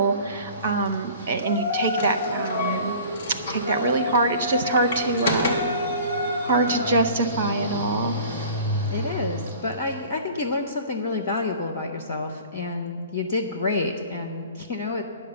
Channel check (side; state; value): both; inverted; correlation -0.44